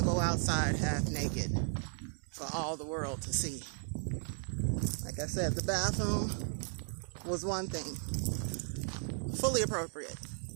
go outside half naked for all the world to see. Like I said, the bathroom was one thing, fully appropriate.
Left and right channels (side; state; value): left; silent; 54 dB below the other